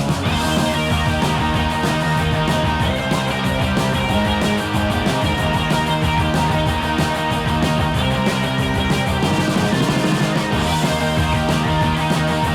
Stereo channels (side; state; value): both; identical; correlation 1.00